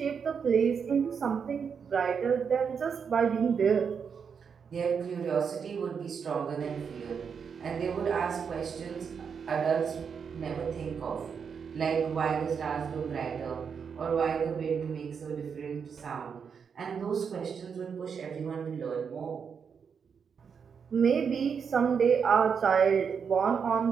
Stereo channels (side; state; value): left; quieter; 6.5 dB